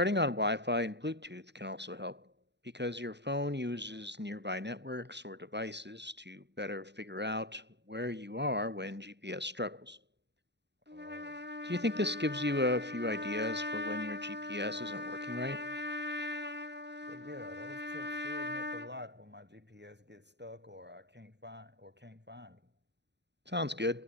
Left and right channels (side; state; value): left; late; 0.50 ms